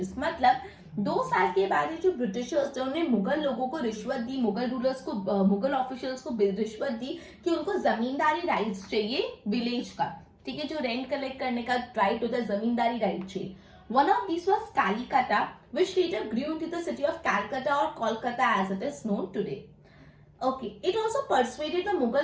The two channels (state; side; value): identical; both; correlation 1.00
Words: मतलब 2 साल के बाद जो ब्रिटिशर्स थे उन्होंने मुगल लोगों को रिश्वत दी, मुगल रूलर्स को, मुगल ऑफिशियल्स को रिश्वत दी कि उनको जमींदारी राइट्स चाहिए विलेज का. ठीक है. जो रेंट कलेक्ट करने का राइट होता है जमींदारी राइट चाहिए. One of these was Kalikata, which later grew into the city of Calcutta or Kolkata as it is known today. Okay, it also persuaded the Mughal